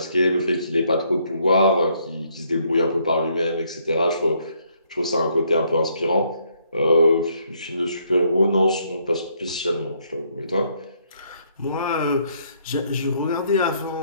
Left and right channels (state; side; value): inverted; both; correlation -0.70